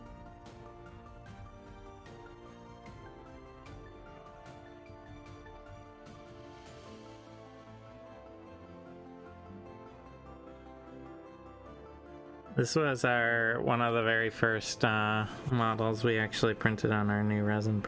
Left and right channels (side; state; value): both; identical; correlation 1.00